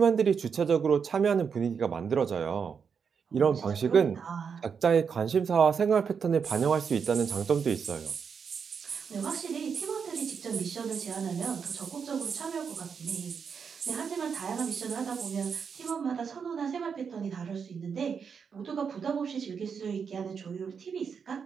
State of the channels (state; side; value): quieter; left; 6.4 dB